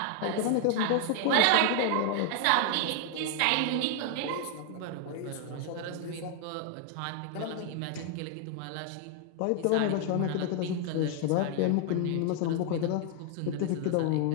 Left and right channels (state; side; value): different; both; correlation 0.00